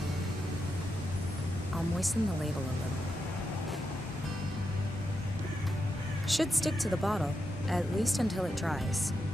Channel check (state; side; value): normal; both; correlation 0.86